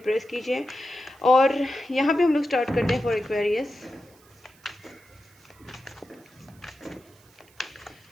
प्रेस कीजिए। और यहाँ पे हम लोग स्टार्ट करते हैं फॉर एक्वेरियस।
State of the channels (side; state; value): right; noise; hiss, 29 dB below the sound